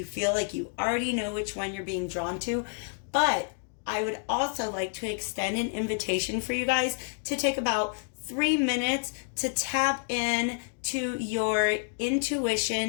feel like you already know which one you're being drawn to. But I would also like to extend an invitation for you guys to take about 3 minutes to tap in to your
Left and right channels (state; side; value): silent; right; digital silence